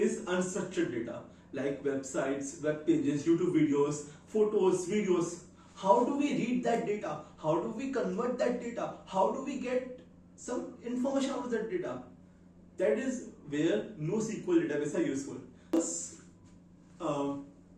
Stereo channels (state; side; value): identical; both; correlation 1.00